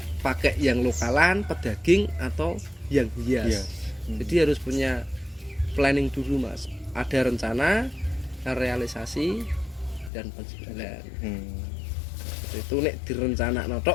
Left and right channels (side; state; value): right; drops out; at 10.1 s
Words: pakai yang lokalan, pedaging atau yang hias. Jadi harus punya planning dulu Mas. Ada rencana, realisasi, dan penjualan. Itu nek direncanakno